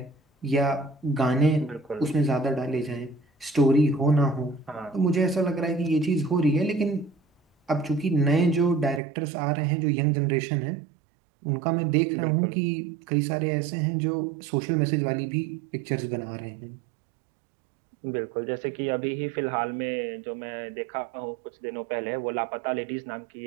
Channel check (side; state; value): left; drops out; at 9.0 s